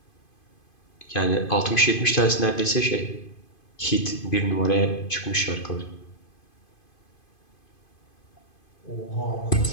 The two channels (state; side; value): late; right; 2.5 ms